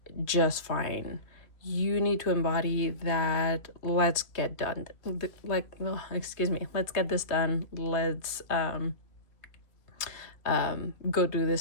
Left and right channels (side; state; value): right; late; 3.1 ms